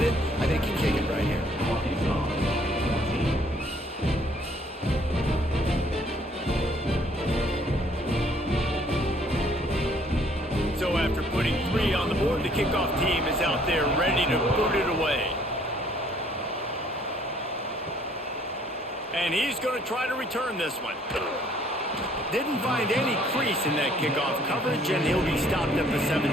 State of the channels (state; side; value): normal; both; correlation 0.62